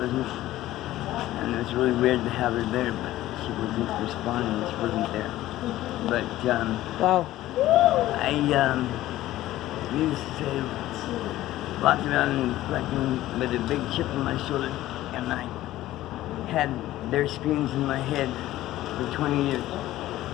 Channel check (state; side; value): quieter; right; 15.1 dB